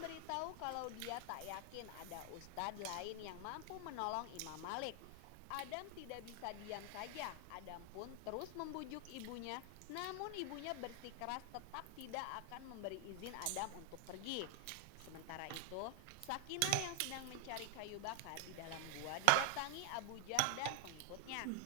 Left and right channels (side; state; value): both; different; correlation 0.00